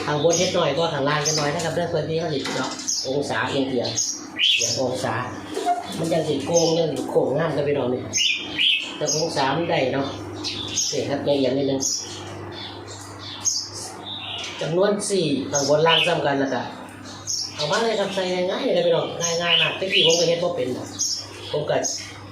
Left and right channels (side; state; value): both; identical; correlation 1.00